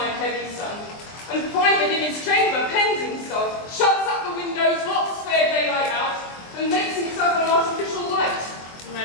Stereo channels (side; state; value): right; late; 23 ms